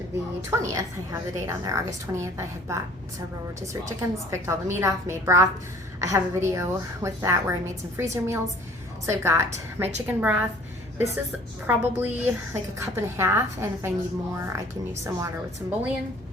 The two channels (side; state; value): both; normal; correlation 0.53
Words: the 20th. I have the date on there, August 20th. I had bought several rotisserie chickens, picked all the meat off, made broth. I have a video with that where I made some freezer meals. So I've got my chicken broth. This is probably like a cup and a half, and if I need more, I can use some water with some bouillon.